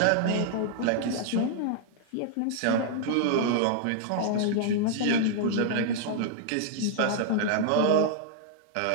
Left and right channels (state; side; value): different; both; correlation -0.01